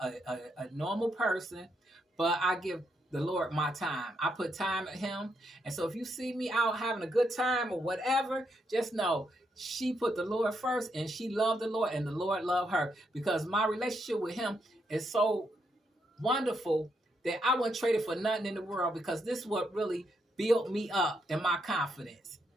normal person, but I give the Lord my time. I put time at him. And so if you see me out having a good time or whatever, just know she put the Lord first and she loved the Lord and the Lord loved her because my relationship with him is so wonderful that I wouldn't trade it for nothing in the world because this is what really built me up in my confidence.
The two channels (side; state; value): both; normal; correlation 0.79